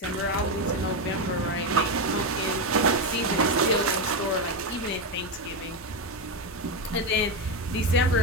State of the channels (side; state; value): both; normal; correlation 0.10